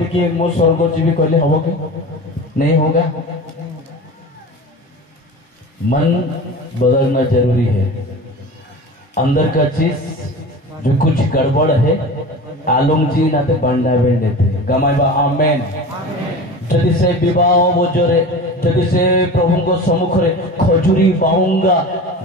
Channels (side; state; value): both; normal; correlation 0.33